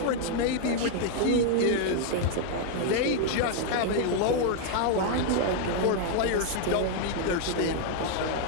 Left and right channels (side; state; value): both; different; correlation 0.00